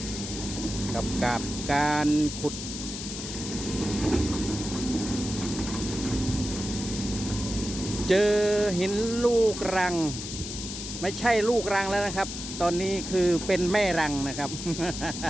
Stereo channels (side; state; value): left; noise; hiss, 7 dB below the sound